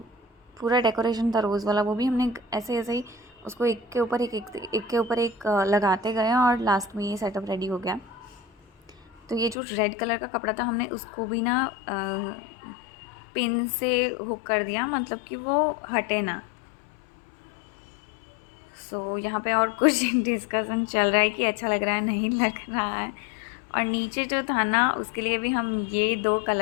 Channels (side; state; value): right; drops out; at 9.6 s